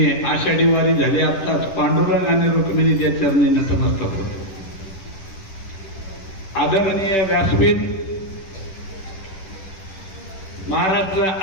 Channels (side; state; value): right; late; 10 ms